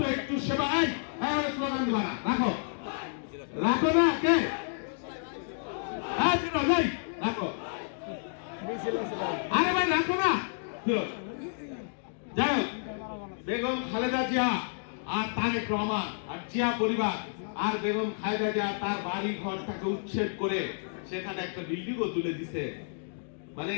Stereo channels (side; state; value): right; silent; digital silence